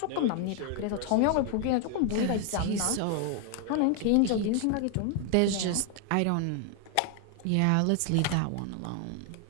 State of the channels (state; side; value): different; both; correlation 0.00